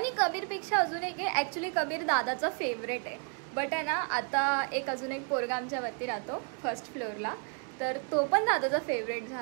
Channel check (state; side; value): quieter; left; 39.0 dB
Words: कबीरपेक्षा अजून एक आहे, ॲक्च्युली कबीर दादाचा फेवरेट आहे. बट आहे ना आता एक अजून एक पोरगा आमच्यावरती राहतो फर्स्ट फ्लोअरला, तर तो पण दादाचा फेवरेट